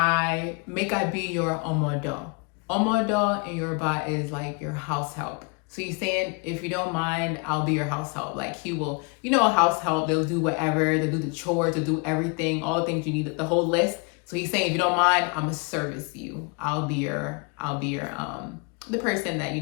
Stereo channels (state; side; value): quieter; right; 32.8 dB